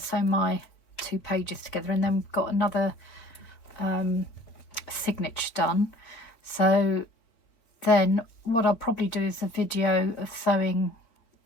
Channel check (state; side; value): late; right; 4.2 ms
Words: my 2 pages together, and then we've got another signature done. So then what I'll probably do is a video of sewing